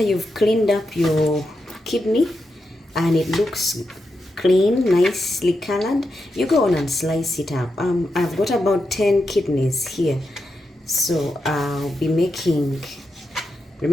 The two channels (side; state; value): both; normal; correlation 0.87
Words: you've cleaned up your kidney and it looks clean, nicely colored, you go on and slice it up. I've got about 10 kidneys here, so I'll be making,